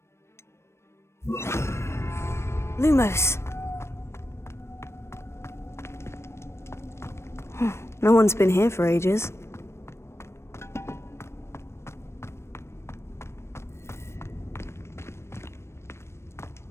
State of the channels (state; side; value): late; right; 0.13 ms